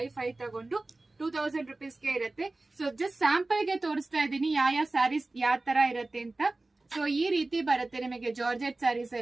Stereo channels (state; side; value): quieter; left; 3.1 dB